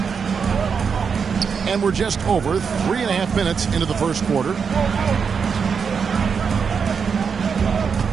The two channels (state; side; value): quieter; left; 6.1 dB